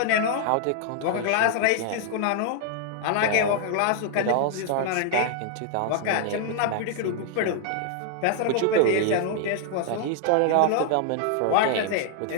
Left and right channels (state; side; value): different; both; correlation 0.00